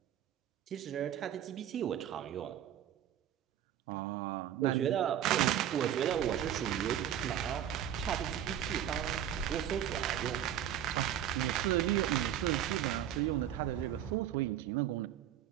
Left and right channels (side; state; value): left; quieter; 10.8 dB